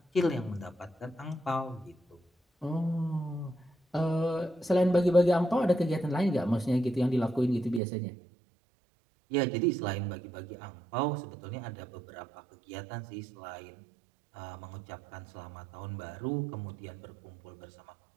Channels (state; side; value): drops out; left; at 7.8 s